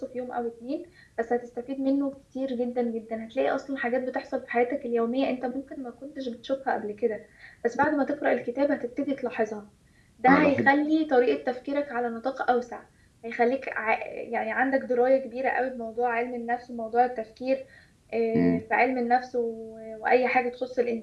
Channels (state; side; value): identical; both; correlation 1.00